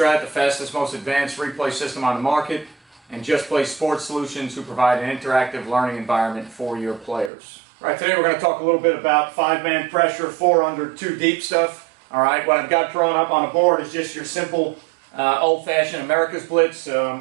the fastest, most advanced replay system on the market, and Just Play Sports Solutions, who provide an interactive learning environment for your players. All right, today we're going to talk a little bit about 5-man pressure, 4 under, 2 deep stuff. All right, what I've got drawn up on the board is just your simple old-fashioned America's Blitz,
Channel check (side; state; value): left; drops out; at 7.3 s